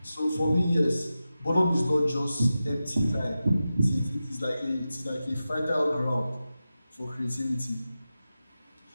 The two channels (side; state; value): both; inverted; correlation -0.93